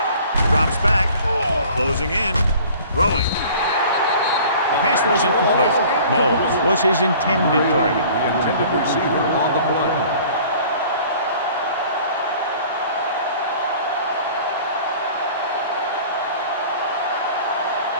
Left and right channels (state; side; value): inverted; both; correlation -0.48